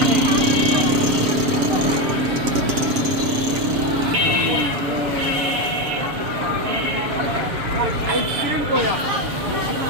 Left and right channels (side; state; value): left; late; 7.5 ms